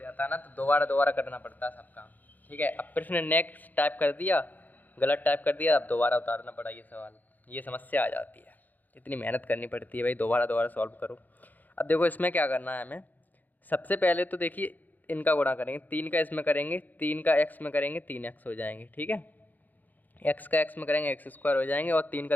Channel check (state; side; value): late; right; 0.084 ms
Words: है ना, तो दोबारा करना पड़ता है सब काम। ठीक है, अब प्रश्न नेक्स्ट टाइप कर दिया, गलत टाइप कर दिया, अब दोबारा उतारना पड़ा ये सवाल, ये समस्या आ जाती है, इतनी मेहनत करनी पड़ती है भाई, दोबारा सॉल्व करो। अब देखो इसमें क्या करना है हमें, सबसे पहले तो देखिए इनका गुणा करेंगे, 3 का इसमें करेंगे, 3 का x में करेंगे, 3x हो जाएंगे। ठीक है, x का x में करेंगे x स्क्वायर हो जाएंगे, और 3 का